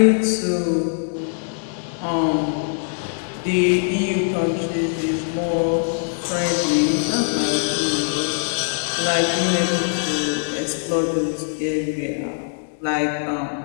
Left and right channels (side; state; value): right; silent; digital silence